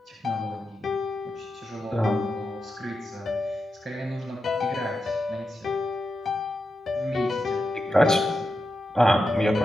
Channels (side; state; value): both; normal; correlation 0.88